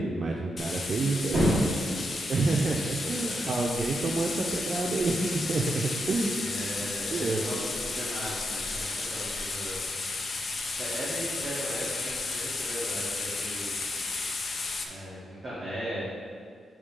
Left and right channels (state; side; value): normal; both; correlation 0.83